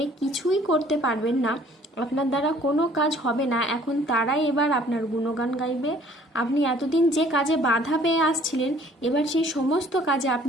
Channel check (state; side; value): normal; both; correlation 0.56